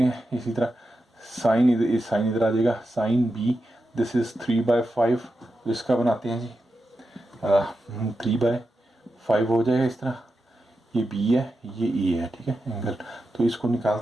हैं। इसी तरह साइन इधर आ जाएगा, साइन बी दिस इज़ 3/5, तो इसका बनाते हैं जी 3/5 हो जाएगा इस तरह। ये बी है, ये ए है, ठीक है एंगल, तो इसको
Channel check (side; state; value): both; normal; correlation 0.89